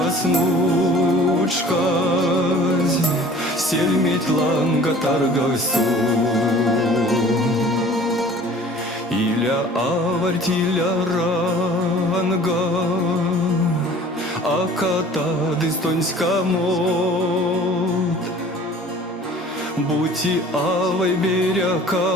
снучкась, сельметь ланга таргавсту. Иля аварть, иля ранга, а ката дистонська мод. Бути авай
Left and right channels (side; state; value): both; normal; correlation 0.48